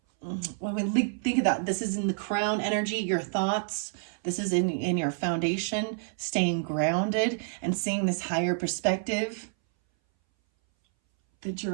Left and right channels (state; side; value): silent; left; 59 dB below the other